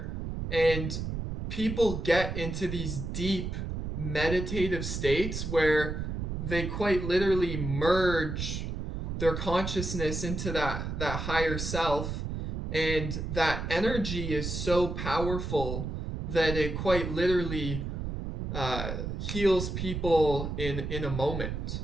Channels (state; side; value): noise; right; rumble, 4 dB below the sound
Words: and people get into these deep meditative states where they quite literally merge their consciousness into that higher self, and that energy is so powerful that it quite literally heals people in a moment.